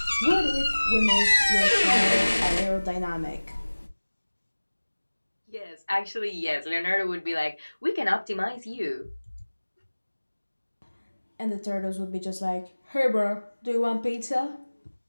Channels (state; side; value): inverted; both; correlation -1.00